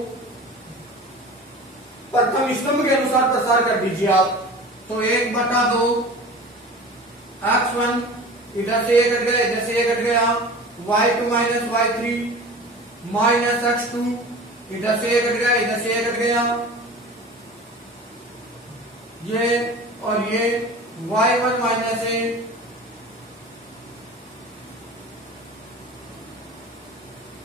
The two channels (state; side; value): normal; both; correlation 0.38